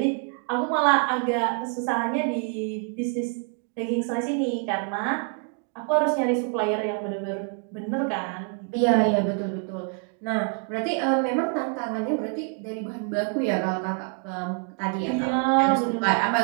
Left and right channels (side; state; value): left; quieter; 39.3 dB